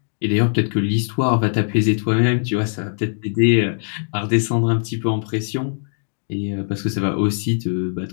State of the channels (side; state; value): right; silent; digital silence